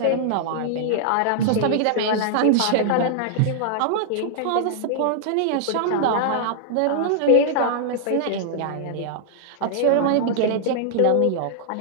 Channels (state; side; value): different; both; correlation -0.01